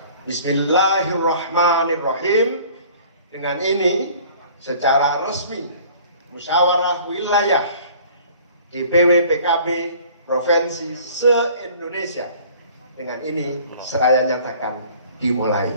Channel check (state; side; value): inverted; both; correlation -0.50